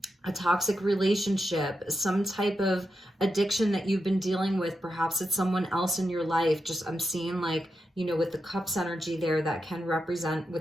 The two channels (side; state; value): both; normal; correlation 0.87